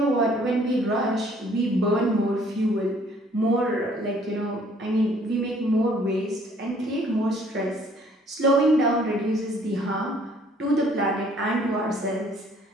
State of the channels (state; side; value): normal; both; correlation 0.60